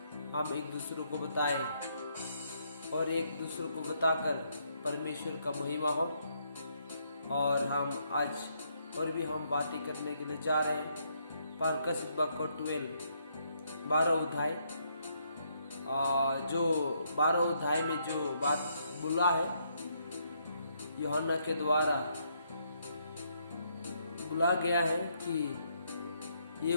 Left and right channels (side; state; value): both; inverted; correlation -0.74